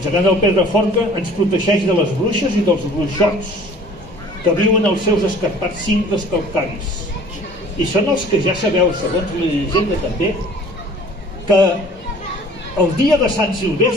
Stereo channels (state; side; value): normal; both; correlation 0.49